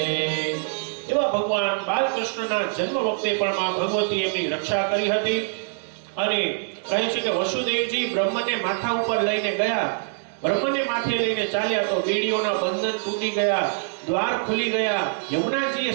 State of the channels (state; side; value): silent; left; digital silence